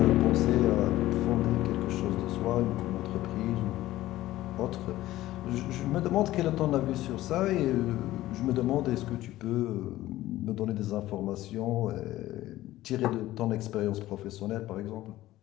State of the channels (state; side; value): quieter; right; 15.6 dB